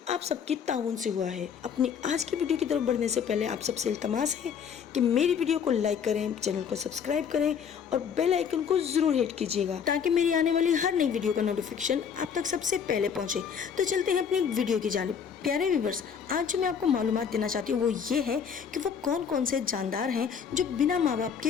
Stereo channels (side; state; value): right; quieter; 7.3 dB